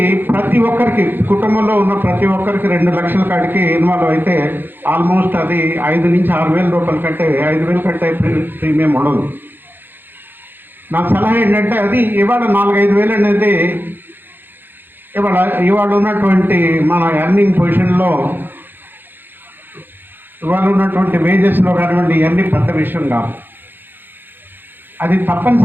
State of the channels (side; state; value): left; late; 0.095 ms